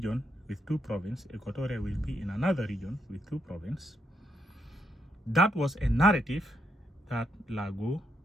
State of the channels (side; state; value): both; normal; correlation 0.78